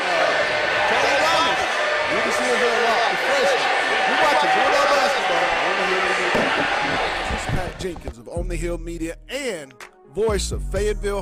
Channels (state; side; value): identical; both; correlation 1.00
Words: Charlie Ryan. Jenkins of On the Hill Media and voice of Fayetteville